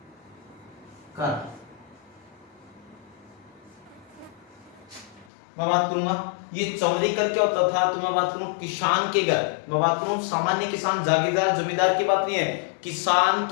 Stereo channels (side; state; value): right; drops out; at 5.2 s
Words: कर मैं बात करूंगा ये चौरी कर क्या होता था, तो मैं बात करूं किसान के घर, मैं बात करूं सामान्य किसान जागीरदार जमींदार की बात नहीं है, किसान